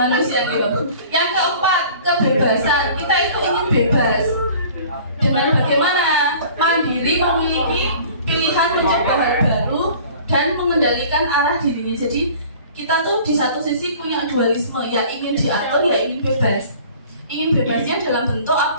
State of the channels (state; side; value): inverted; both; correlation -0.47